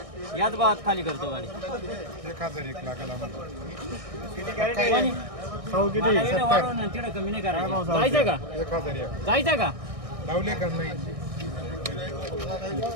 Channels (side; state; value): left; late; 1.6 ms